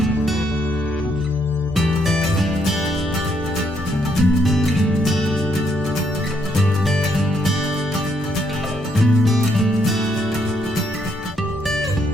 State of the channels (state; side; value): normal; both; correlation 0.73